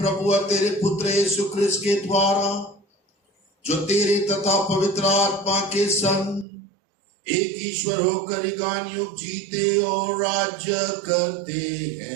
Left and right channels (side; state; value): left; drops out; at 6.5 s